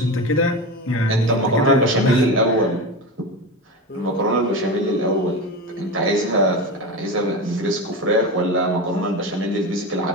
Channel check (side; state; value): both; normal; correlation 0.23